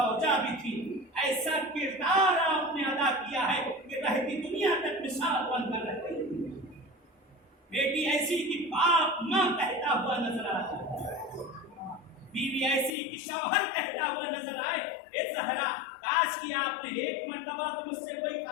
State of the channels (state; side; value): drops out; right; at 12.9 s